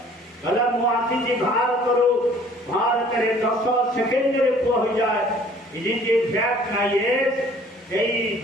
କହିଲା ମୁଁ ଆସିଛି ଭାରତରୁ, ଭାରତରେ 10 ସେକେଣ୍ଡରେ ପୁଅ ହୋଇଯାଏ। ଇଏ ଫ୍ୟାକ୍ଟ ନା ୟେସ୍? ସେଇ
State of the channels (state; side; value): normal; both; correlation 0.54